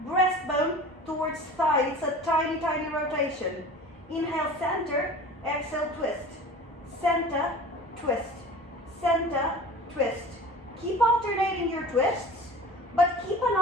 breastbone towards thigh. It's a tiny, tiny rotation. Inhale, center, exhale, twist. Center, twist. Center, twist. Keep alternating your twists, but keep an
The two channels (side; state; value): both; normal; correlation 0.40